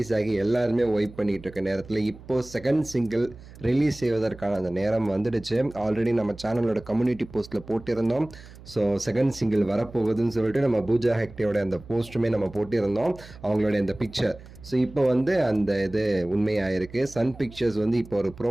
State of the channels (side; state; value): right; noise; hum, 19 dB below the sound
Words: ஆகி எல்லாருமே வைப் பண்ணிட்டு இருக்க நேரத்தில் இப்போ செகண்ட் சிங்கிள் ரிலீஸ் செய்வதற்கான அந்த நேரம் வந்துடுச்சு. ஆல்ரெடி நம்ம சேனலோட கம்யூனிட்டி போஸ்ட்டில் போட்டிருந்தோம். ஸோ செகண்ட் சிங்கிள் வரப்போகுதுன்னு சொல்லிட்டு நம்ம பூஜா ஹெக்டேயோட அந்த போஸ்ட்டுமே நம்ம போட்டிருந்தோம், அவங்களுடைய அந்த பிக்சர். ஸோ இப்போ வந்து அந்த இது உண்மையாயிருக்கு. சன் பிக்சர்ஸ் வந்து இப்போ ஒரு